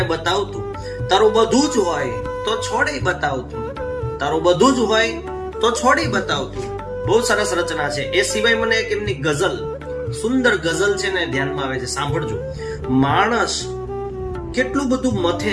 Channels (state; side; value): identical; both; correlation 1.00